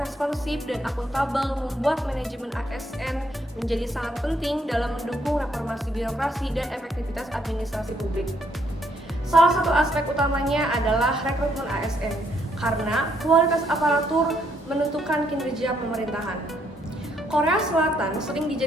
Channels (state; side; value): normal; both; correlation 0.71